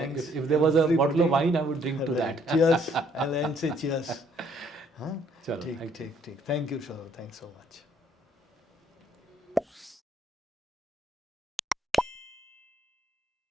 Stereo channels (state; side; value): normal; both; correlation 0.65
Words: If there was a bottle of wine, I would drink to that. Cheers. I'll say cheers. Huh? Chalo, Take. Thank you, Saurav. Thanks so much.